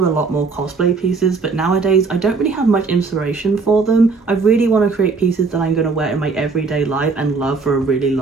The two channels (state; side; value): quieter; left; 4.4 dB